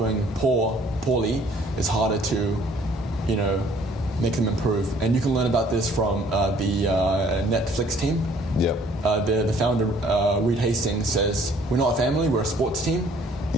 poorly, it's harder to, make them improve. And you can learn about this from the Netflix team. Yep. The founder, Reed Hastings, says, we're not a family, we're a sports team.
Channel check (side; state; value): both; normal; correlation 0.58